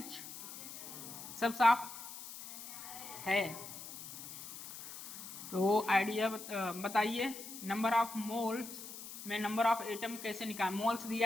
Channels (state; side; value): noise; left; hiss, 11 dB below the sound